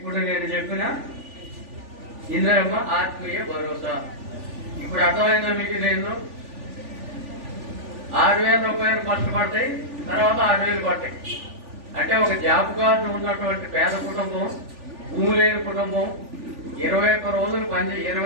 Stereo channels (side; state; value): left; late; 3.4 ms